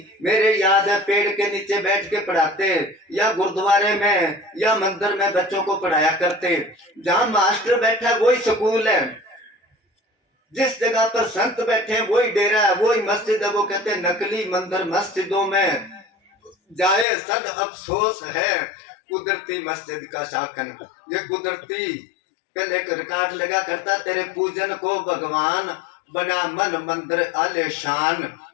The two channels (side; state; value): right; drops out; at 17.1 s